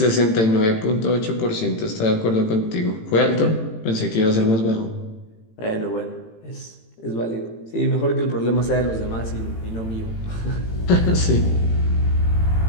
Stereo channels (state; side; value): late; right; 18 ms